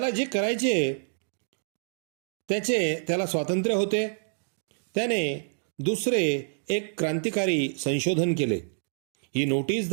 जे करायचे त्याला स्वातंत्र्य होते. त्याने दुसरे एक क्रांतिकारी संशोधन केले. He notice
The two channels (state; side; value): silent; left; digital silence